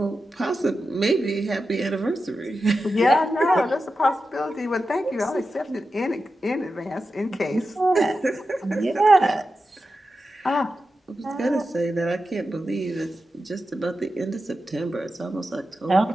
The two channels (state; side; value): normal; both; correlation 0.91